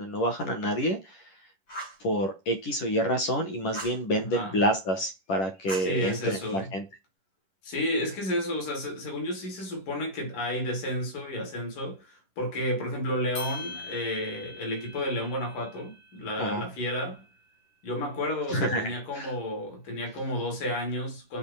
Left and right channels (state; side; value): late; right; 10 ms